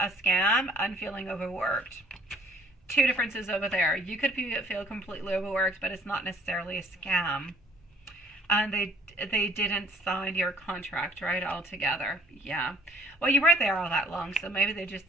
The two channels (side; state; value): both; normal; correlation 0.57